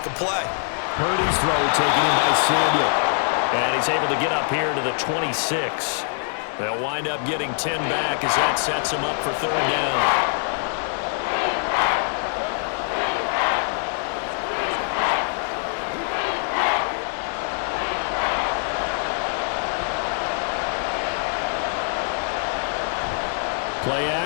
a play. Purdy's throw taken in by Samuel. And he's able to get up here to the 26. They'll wind up getting 10 back as that sets them up for 3rd down. Play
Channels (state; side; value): silent; right; 63 dB below the other